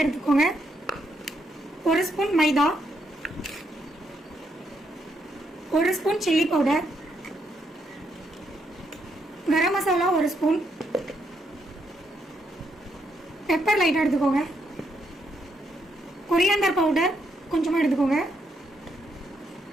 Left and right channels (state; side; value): normal; both; correlation 0.77